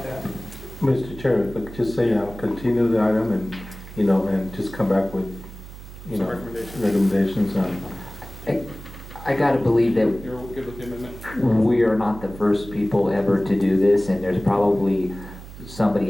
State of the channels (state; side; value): noise; right; hum, 15 dB below the sound